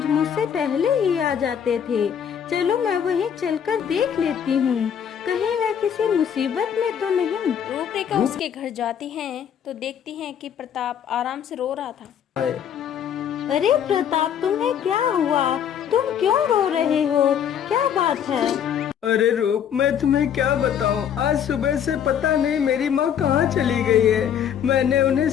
मुझसे पहले ही आ जाते थे, चलो मैं वहीं चलकर देख लेती हूँ, कहीं वह किसी मुसीबत में तो नहीं। रूपरेखा उसके घर जाती हैं तो देखती हैं कि प्रताप आराम से रो रहा था। अरे प्रताप, तुम्हें क्या हुआ? तुम क्यों रो रहे हो? क्या बात है? अरे रूप, मैं तुम्हें क्या बताऊं, आज सुबह से पता नहीं मेरी माँ कहाँ चली गई है। मैंने उन्हें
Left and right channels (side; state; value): right; quieter; 8.7 dB